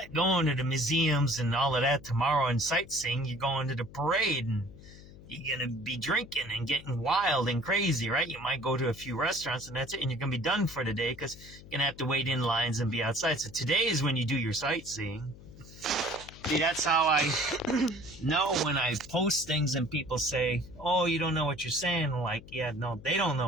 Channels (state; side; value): noise; left; hum, 18 dB below the sound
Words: going to the museums and all of that tomorrow and sightseeing. You're going to the parade and you're going to be drinking and getting wild and crazy, right? You might go to a few restaurants and that's it. And you're going to be done for the day because you're going to have to wait in lines and be outside. So today is when you do your sightseeing. See, that's how I know when I post things and people say, oh, you don't know what you're saying. Like, yeah, no, they don't